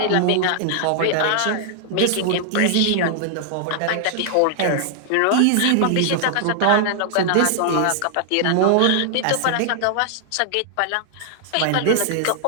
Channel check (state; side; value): different; both; correlation -0.01